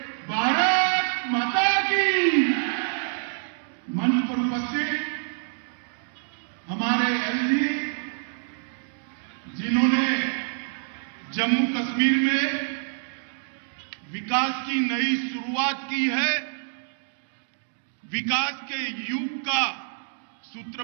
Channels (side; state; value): left; silent; digital silence